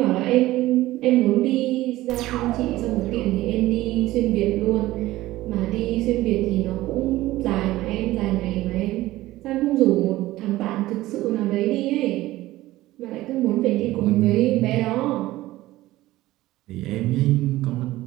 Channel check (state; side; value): quieter; left; 16.8 dB